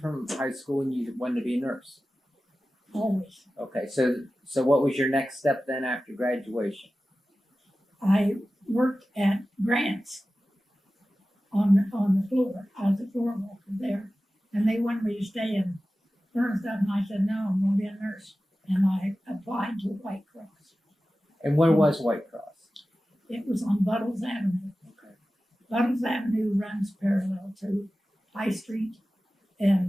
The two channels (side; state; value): both; normal; correlation 0.95